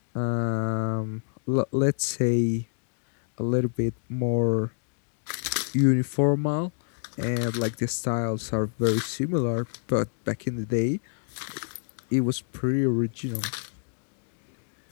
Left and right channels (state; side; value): silent; right; digital silence